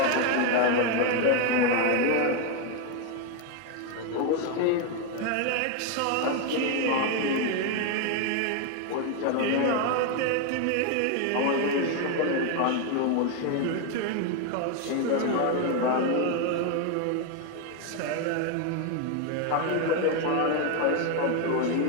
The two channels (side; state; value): both; different; correlation 0.01